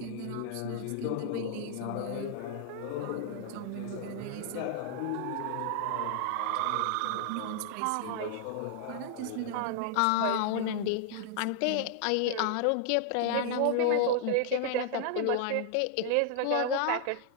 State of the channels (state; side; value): different; both; correlation 0.00